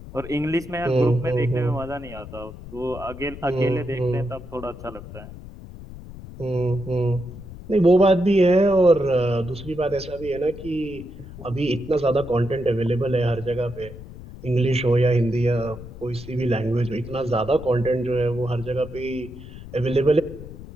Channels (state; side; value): noise; left; rumble, 14 dB below the sound